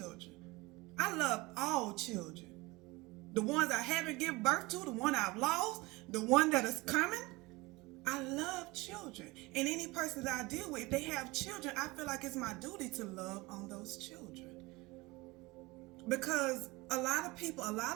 I love all children. The ones I haven't given birth to, the one I've lost, the one that is coming. I love children. And any person that I deal with, if they have children, I feel like it's my duty to love on those children. Because a lot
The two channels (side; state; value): left; quieter; 22.8 dB